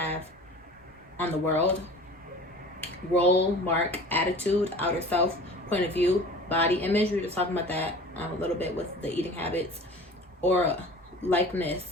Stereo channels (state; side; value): normal; both; correlation 0.41